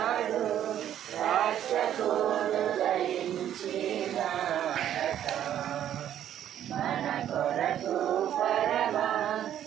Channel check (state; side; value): quieter; left; 10.7 dB